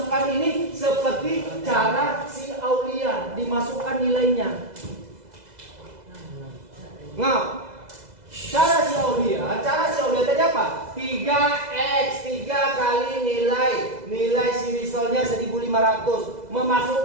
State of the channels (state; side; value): late; left; 2.0 ms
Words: ini seperti cara si Aulia dimasukkan nilainya. Nah, cara si Aulia tadi apa? 3x 3 kali nilai si risolnya 1.500